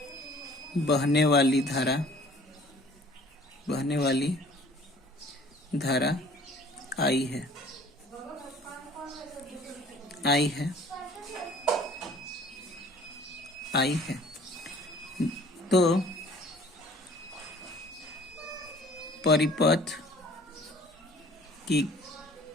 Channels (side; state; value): both; normal; correlation 0.51